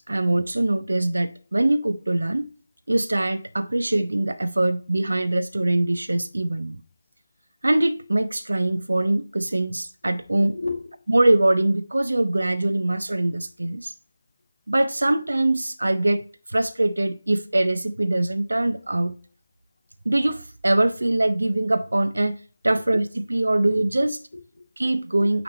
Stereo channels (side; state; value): both; inverted; correlation -0.99